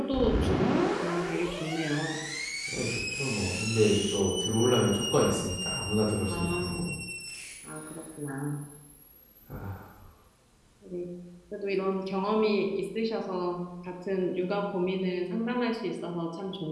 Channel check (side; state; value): both; identical; correlation 1.00